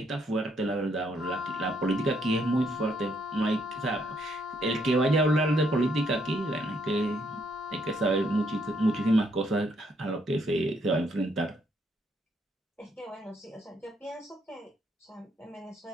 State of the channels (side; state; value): both; normal; correlation 0.72